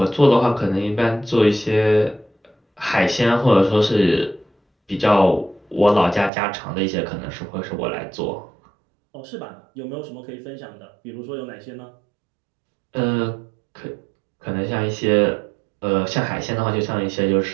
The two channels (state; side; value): drops out; left; at 6.3 s